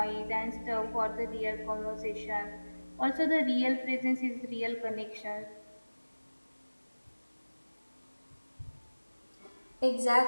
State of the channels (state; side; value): inverted; both; correlation -1.00